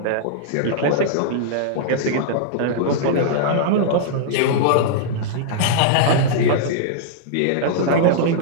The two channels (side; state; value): both; different; correlation -0.02